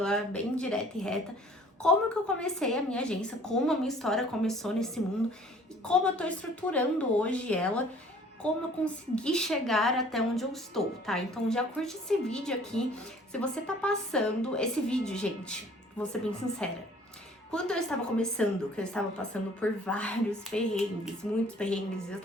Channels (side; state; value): both; normal; correlation 0.53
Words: bem direta e reta, como que eu comecei a minha agência, como a minha história começou nesse mundo e como eu tô estruturando hoje ela, como eu consegui chegar até onde eu estou, tá? Então já curte esse vídeo aqui. Se você tá passando esse vídeo, gente, vou ser bem sincera. Quando eu estava começando, que eu estava passando por vários perrengues, muitos perrengues, eu